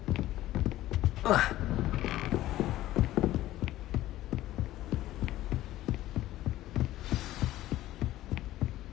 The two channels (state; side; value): quieter; right; 15.0 dB